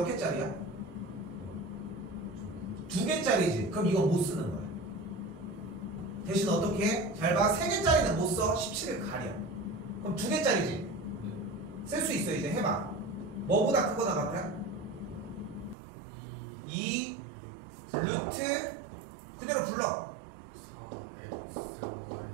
개짜리야? 2개짜리지. 그럼 이건 못 쓰는 거야. 대신 어떻게 해? 잘 봐. 3개짜리는 못 써. 17을 가려. 그럼 2개짜리지. 쓸 수 있어. 이제 해봐. 뭐보다 크거나 같아? 2 루트 그대로 불러.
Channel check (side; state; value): left; drops out; at 15.8 s